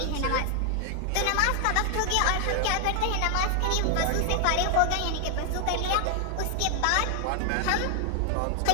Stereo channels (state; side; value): different; both; correlation 0.00